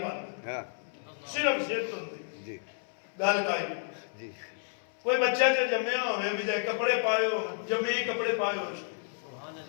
پاندے ہاں صرف زد ہوندی جی گل کائی جی کوئی بچہ جو جمعہ ہوئے بھی جائے کپڑے پائے ہو جمعی کپڑے پائے ہوئے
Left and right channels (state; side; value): silent; right; 57 dB below the other